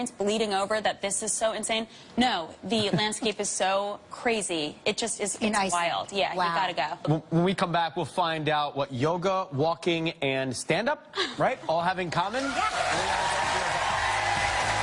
bleeding over that this is so insane? No, the landscape is so crazy. It just is, it's wild. Yeah, wow. You gotta go. When we come back, we'll find out what yoga, walking, and stand-up, right, all have in common.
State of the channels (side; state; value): both; identical; correlation 1.00